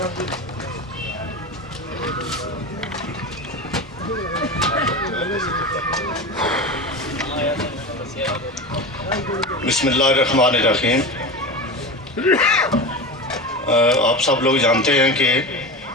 बिस्मिल्लाहिर्रहमानिर्रहीम। आप सब लोग जानते हैं कि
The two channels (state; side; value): normal; both; correlation 0.26